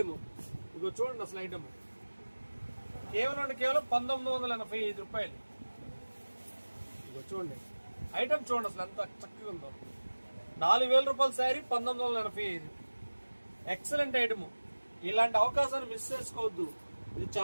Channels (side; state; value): both; inverted; correlation -1.00